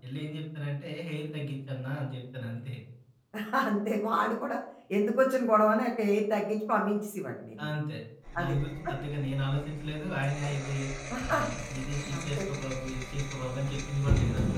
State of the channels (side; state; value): both; identical; correlation 1.00